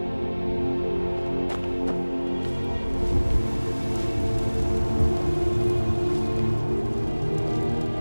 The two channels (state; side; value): inverted; both; correlation -1.00